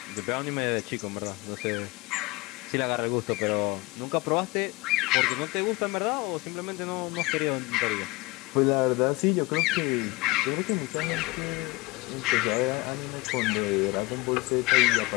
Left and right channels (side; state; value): right; quieter; 23.0 dB